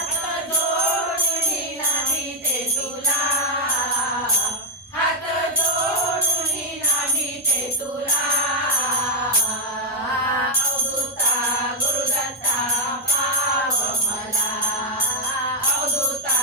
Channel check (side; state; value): both; normal; correlation -0.01